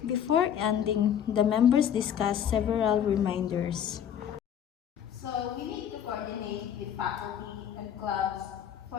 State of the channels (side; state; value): right; quieter; 9.2 dB